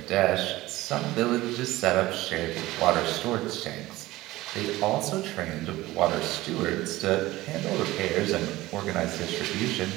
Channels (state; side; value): quieter; left; 17.9 dB